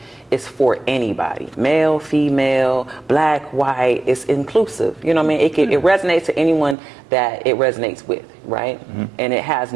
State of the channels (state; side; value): drops out; left; at 6.8 s